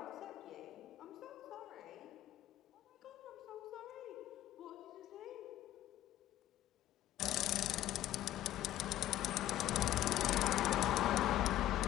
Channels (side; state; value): right; quieter; 13.6 dB